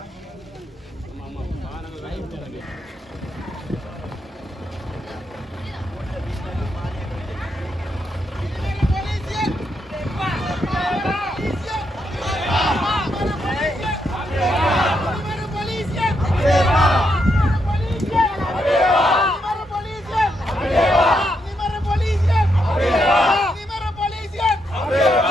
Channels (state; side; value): normal; both; correlation 0.80